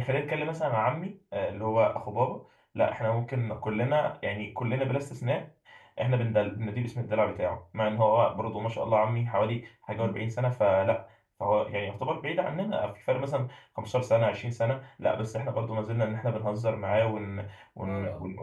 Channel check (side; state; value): both; identical; correlation 1.00